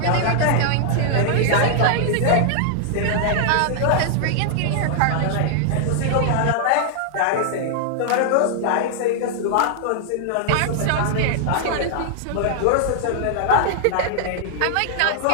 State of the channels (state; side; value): different; both; correlation -0.01